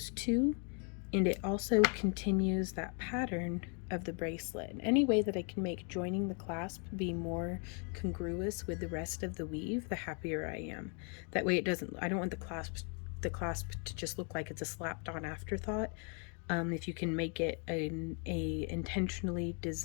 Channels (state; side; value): quieter; right; 39.1 dB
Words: two, and it also continues that pattern of the bracelet. And any way that I can make joining the clasp be more congruous with the rest of the weave, the happier I am. That way it doesn't, I don't want the clasp to just look like it's a slapped on afterthought. If you can make it a intentionally